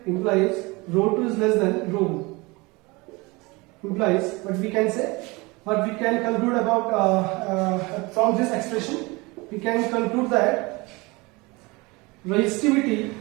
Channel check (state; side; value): quieter; left; 24.7 dB